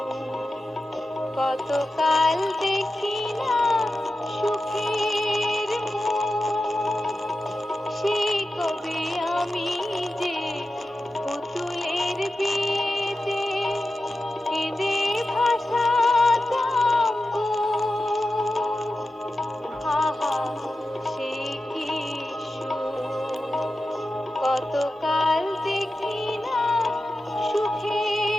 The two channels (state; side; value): normal; both; correlation 0.92